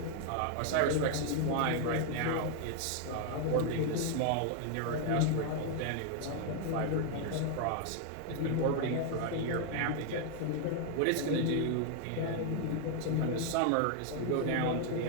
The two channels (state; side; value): different; both; correlation 0.00